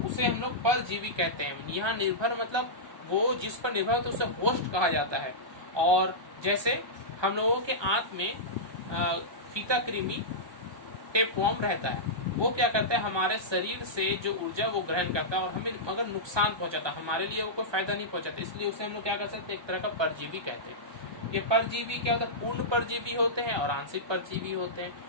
उसे हम लोग परजीवी कहते हैं। यहाँ निर्भर मतलब वो जिस पर निर्भर होता है उसे होस्ट कहा जाता है। और जैसे हम लोगों के आंत में फीता कृमि, टेपवर्म रहता है, वो क्या करता है? हमारे शरीर से जो ऊर्जा वो ग्रहण करता है और हमें अगर नुकसान पहुंचाता, हमारे लिए वो कोई फायदा नहीं पहुंचाता, इसलिए उसे हम लोग क्या कर सकते हैं? एक तरह का परजीवी कहते हैं। ये परजीवी क्या होता है? पूर्ण परजीवी होते हैं और आंशिक परजीवी होते हैं।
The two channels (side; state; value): left; late; 1.2 ms